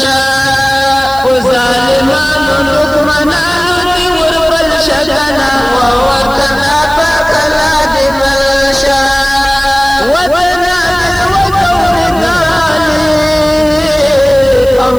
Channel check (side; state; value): right; noise; hiss, 19 dB below the sound